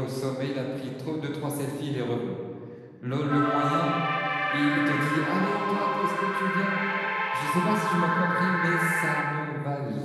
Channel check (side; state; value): both; identical; correlation 1.00